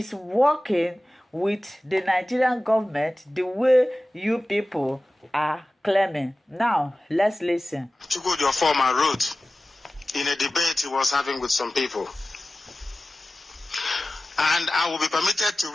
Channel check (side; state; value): both; normal; correlation 0.96